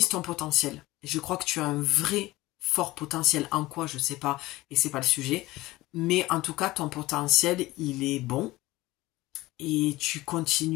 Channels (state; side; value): quieter; right; 18.7 dB